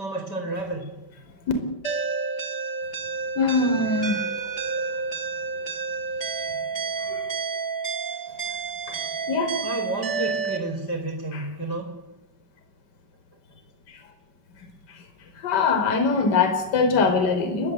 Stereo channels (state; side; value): late; right; 5.2 ms